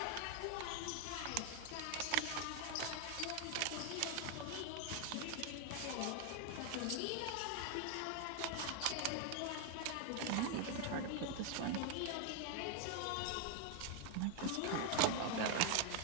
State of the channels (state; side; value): different; both; correlation 0.01